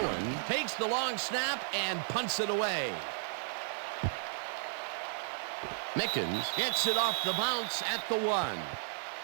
takes the long snap and punts it away. Mickens gets it off the bounce at the 1.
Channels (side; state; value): left; silent; 55 dB below the other